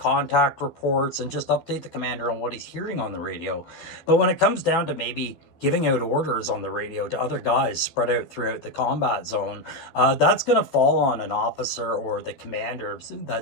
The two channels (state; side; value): late; right; 13 ms